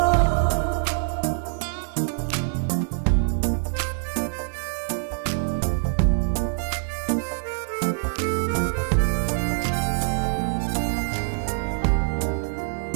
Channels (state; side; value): silent; left; digital silence